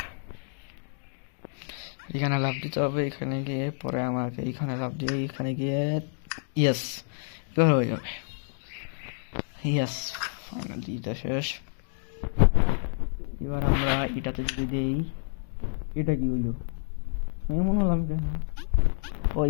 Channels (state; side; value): silent; right; digital silence